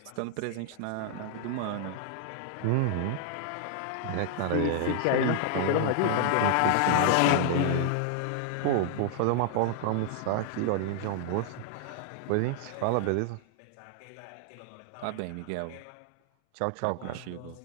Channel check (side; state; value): both; different; correlation -0.01